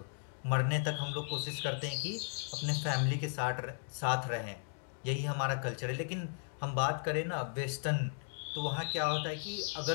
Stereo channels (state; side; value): silent; right; digital silence